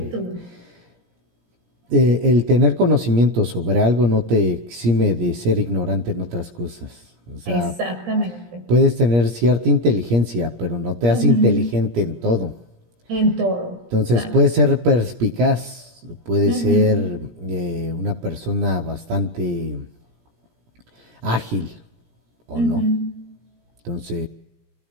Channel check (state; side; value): late; left; 17 ms